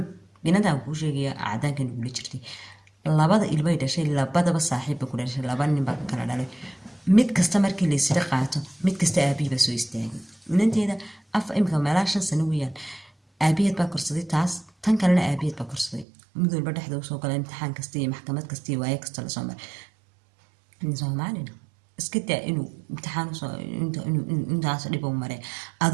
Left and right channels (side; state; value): left; drops out; at 16.1 s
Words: binadan kuu sheegaya cadaankan igula jirtay 2 ilmay dhashay 2 saaxiibba ku dhashay 2 nin baa kala dhalay mid kasta markii la isla qaato mid kasta aabihiiba soo istaagay inanteeda imika meelaa 5 sano weeyaan aabiheed baa korsaday taas tan kalena aabiheed baa korsaday mid walba dhexda usoo gala imtixaan kasta iyo maxkamad kasta iyo waaye kasta lasoo maray soomaalina iska daa inuu imtixaan intaas dhib u maray